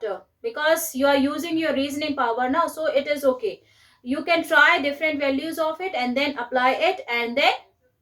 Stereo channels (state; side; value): identical; both; correlation 1.00